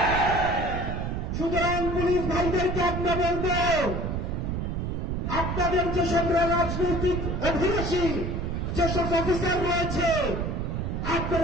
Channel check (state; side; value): noise; right; rumble, 2 dB below the sound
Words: সুতরাং পুলিশ ভাইদেরকে আমরা বলব, আপনাদের যেসব রাজনৈতিক অভিলাষী যেসব অফিসার রয়েছে,